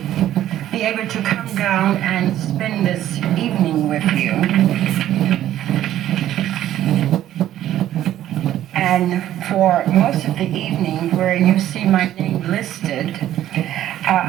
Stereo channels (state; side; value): quieter; left; 12.5 dB